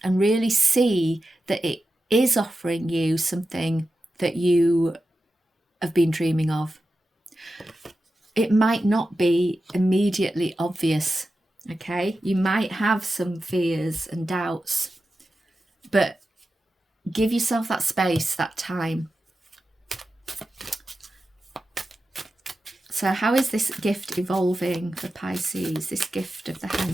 and really see that it is offering you something that you have been dreaming of. It might not be immediately obvious, okay? You might have some fears and doubts, but give yourself that space, that time. So how is this gift evolving for Pisces, this gift of the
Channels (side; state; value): both; normal; correlation 0.92